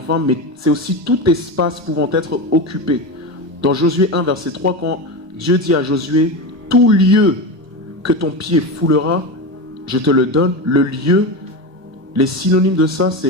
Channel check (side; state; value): left; late; 1.3 ms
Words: mais c'est aussi tout espace pouvant être occupé. Dans Josué 1, verset 3, quand Dieu dit à Josué, tout lieu que ton pied foulera, je te le donne. Le lieu, les synonymes de ça,